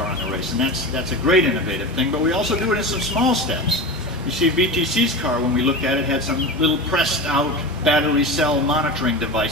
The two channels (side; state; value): both; normal; correlation 0.26